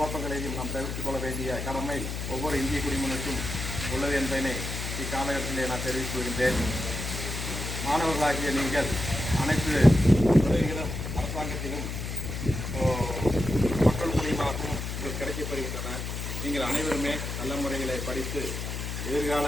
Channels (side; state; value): left; noise; hum, 5 dB below the sound